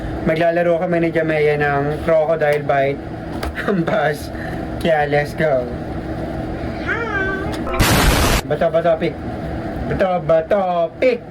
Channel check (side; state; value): both; identical; correlation 1.00